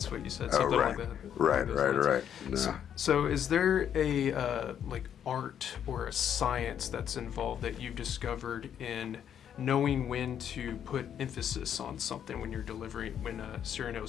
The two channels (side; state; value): right; quieter; 9.1 dB